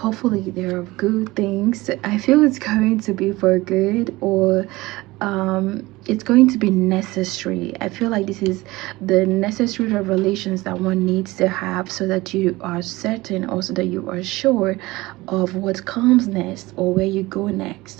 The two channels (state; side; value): quieter; left; 20.2 dB